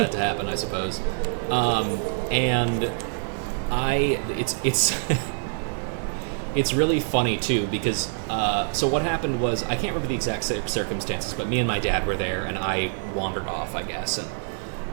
to happen, I suppose. And it's it's really funny too because so what happened was I can't remember the exact circumstances, but me and my dad were there, and I wandered off, I guess,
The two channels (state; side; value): silent; left; digital silence